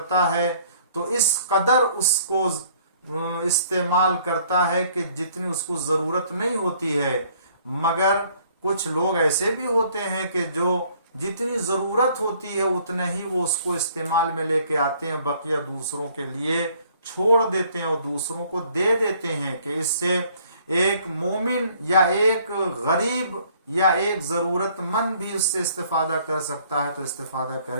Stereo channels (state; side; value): inverted; both; correlation -0.60